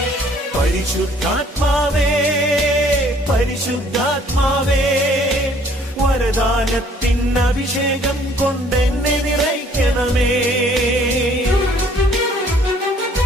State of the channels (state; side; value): normal; both; correlation 0.59